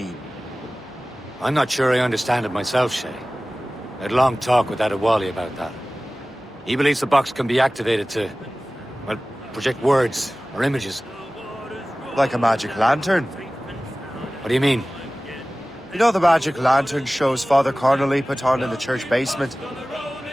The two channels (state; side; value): normal; both; correlation 0.97